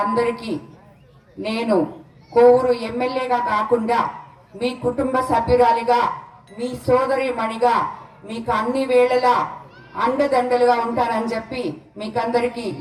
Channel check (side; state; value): both; identical; correlation 1.00